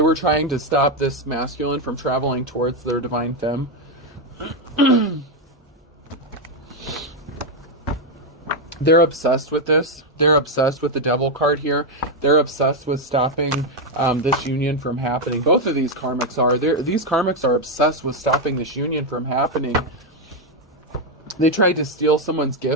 were trying to stop this masculine from traveling towards their divine femme. They're obsessed with this. They're obsessed with the devil card here. They're obsessed with stopping this union from happening. Both of these karmics are. These karmics are obsessed with stopping this union from happening. They tried to steal someone's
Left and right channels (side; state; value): both; normal; correlation 0.04